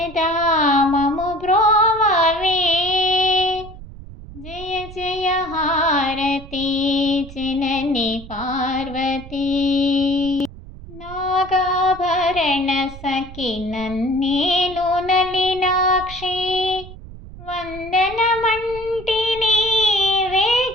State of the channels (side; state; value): right; noise; rumble, 15 dB below the sound